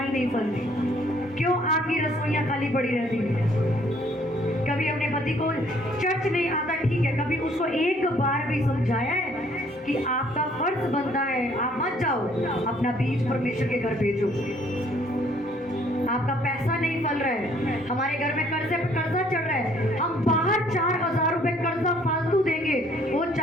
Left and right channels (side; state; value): both; normal; correlation 0.62